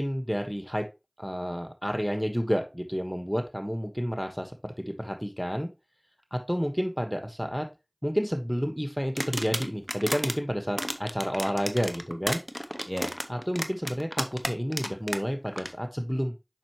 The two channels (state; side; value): identical; both; correlation 1.00